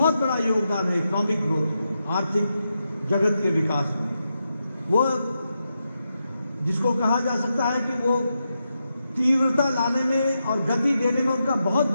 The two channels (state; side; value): inverted; both; correlation -0.86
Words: बड़ा योगदान है इकोनॉमिक ग्रोथ में, आर्थिक जगत के विकास में। वो जिसको कहा जा सकता है कि वो तीव्रता लाने में और गति देने में उनका बहुत